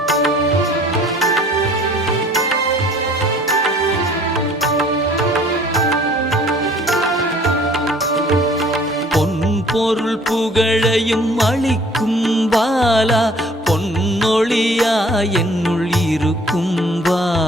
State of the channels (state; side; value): normal; both; correlation 0.54